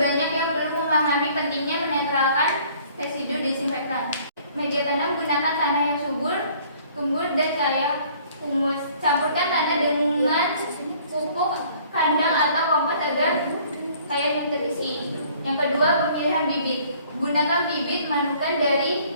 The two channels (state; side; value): inverted; both; correlation -0.56